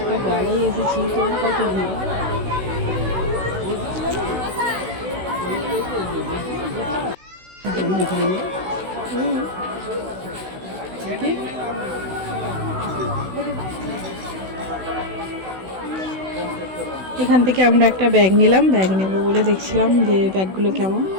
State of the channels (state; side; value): late; left; 16 ms